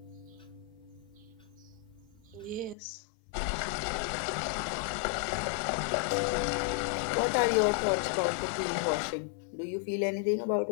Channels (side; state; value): right; drops out; at 2.8 s